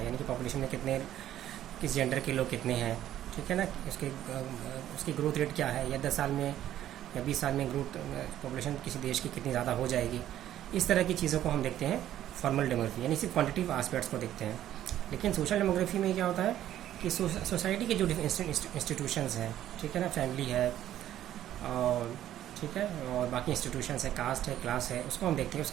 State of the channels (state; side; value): quieter; left; 12.1 dB